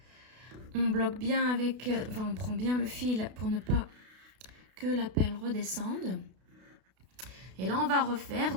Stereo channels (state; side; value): late; left; 32 ms